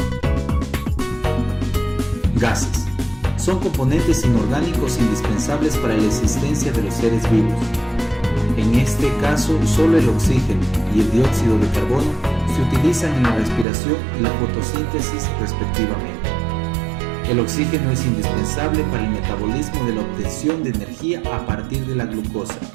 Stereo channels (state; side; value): drops out; left; at 13.7 s